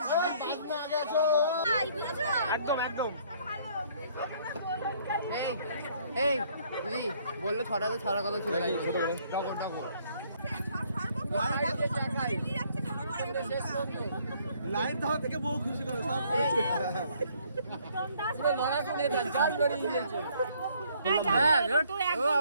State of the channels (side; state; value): both; inverted; correlation -0.63